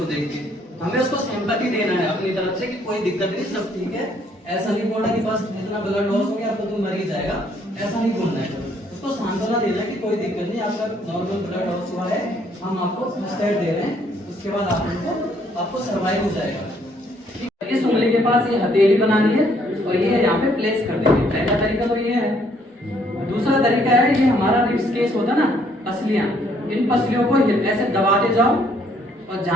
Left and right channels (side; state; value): both; normal; correlation 0.66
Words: देख के। हमें उसको सिंपैथी देना है अपनी तरफ से कि कोई दिक्कत नहीं, सब ठीक है। ऐसा नहीं बोलना कि बस इतना ब्लड लॉस हो गया तो तुम मर ही जाएगा, ऐसा नहीं बोलना है। उसको सांत्वना देना कि कोई दिक्कत नहीं, आपका नॉर्मल ब्लड लॉस हुआ है, हम आपको फर्स्ट एड दे रहे हैं, उसके बाद आपको सर्वाइव हो जाएगा। इस उंगली के पास ये हथेली बनानी है और ये यहाँ पे प्लेस कर देंगे। पहला तरीका तो ये है। दूसरा तरीका है, ये हमारा रिब्स केस होता है ना, पसलियां, इन पसलियों को ऐसे दबाते जाओ और